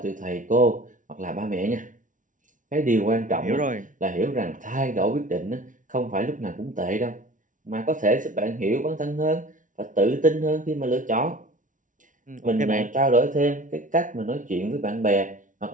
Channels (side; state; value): left; late; 0.38 ms